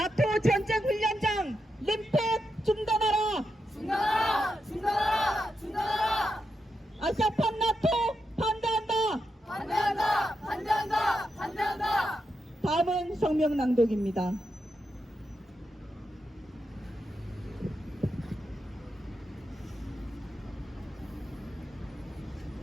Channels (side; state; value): both; normal; correlation 0.86